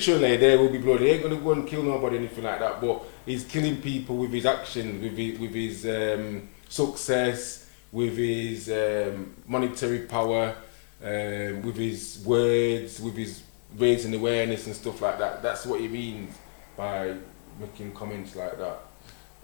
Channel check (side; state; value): right; silent; digital silence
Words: there will be blood. He ain't gonna go and kill nobody, anything like that. But he's killing people with his actions, with his success, with his monetary power, with his words, with his raising awareness and stuff like that. That's what he means by making comments like that.